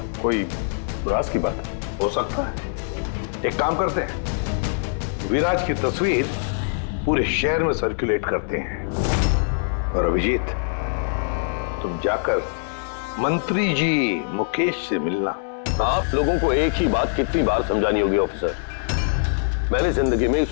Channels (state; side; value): silent; right; digital silence